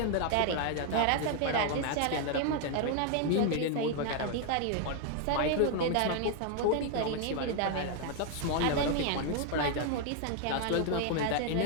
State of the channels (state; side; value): different; both; correlation 0.00